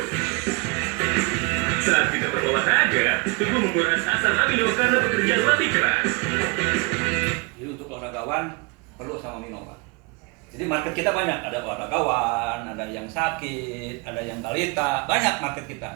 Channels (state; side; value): quieter; left; 29.2 dB